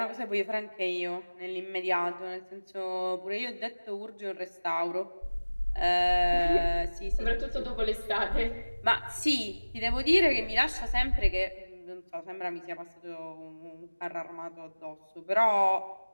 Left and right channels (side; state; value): both; inverted; correlation -1.00